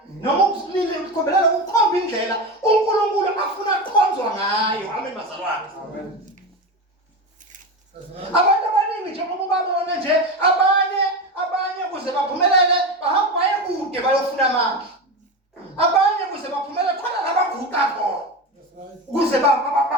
noma ukukhombela ukukhomba indlela uNkulunkulu afuna ukukhonzwa ngayo. Amen bazalwane. Amen. Abantu abaningi njengoba babona nje abanye kuze baphumelele bahamba baye kude bayofuna amandla. Abanye kuze baphumelele khona labaguqa khona. Kuze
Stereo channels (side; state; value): both; normal; correlation 0.21